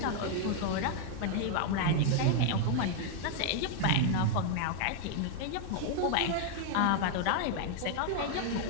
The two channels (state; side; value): different; both; correlation 0.00